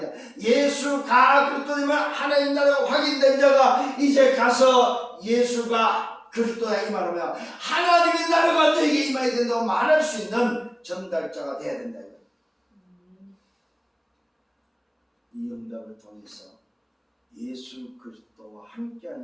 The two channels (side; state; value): both; identical; correlation 1.00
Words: 예수가 그리스도 이 말 하나님 나라가 확인된 자가 이제 가서 예수가 그리스도야 이 말하면 하나님의 나라가 너에게 임해야 된다고 말할 수 있는 전달자가 돼야 된다. 이 응답을 통해서 예수 그리스도와